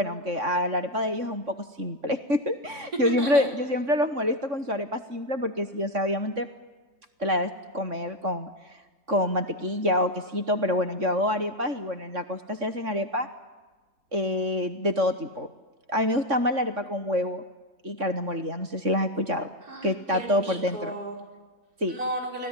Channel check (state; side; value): late; left; 3.6 ms